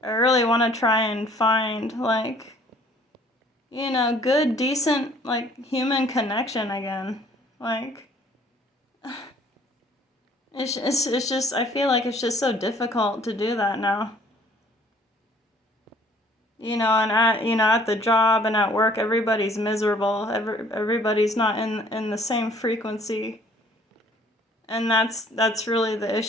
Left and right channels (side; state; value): both; normal; correlation 0.57